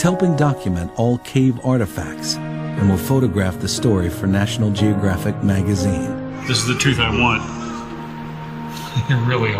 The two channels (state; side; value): identical; both; correlation 1.00